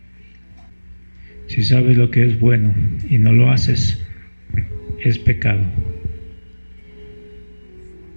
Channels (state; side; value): inverted; both; correlation -1.00